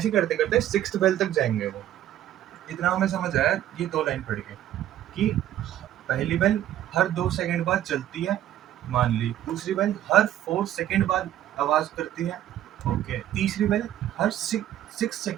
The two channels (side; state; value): left; quieter; 12.2 dB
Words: करते करते 6th बेल तक जाएंगे वो। इतना हमें समझ आया ये 2 लाइन पढ़ के कि पहली बेल हर 2 सेकंड बाद चलती है, मान ली। दूसरी बेल हर 4 सेकंड बाद आवाज करती है, ओके। तीसरी बेल हर 6